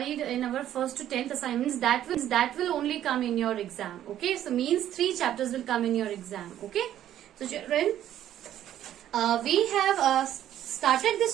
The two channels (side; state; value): left; quieter; 11.6 dB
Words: in our first to 10th assignments that will only come in your exam. Okay. So, means 3 chapters will come in your exam. Okay. So, children, we have started